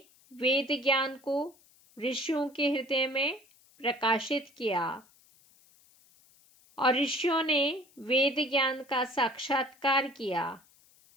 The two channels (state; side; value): noise; left; hiss, 30 dB below the sound